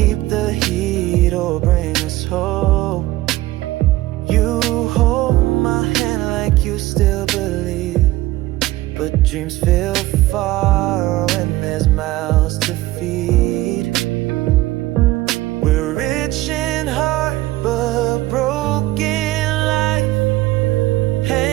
the heat or bring us hope. You hold my hand like you still believe, but dreams feel far when there's mouths to feed. We're rich in heart but broken life,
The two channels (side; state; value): left; quieter; 17.2 dB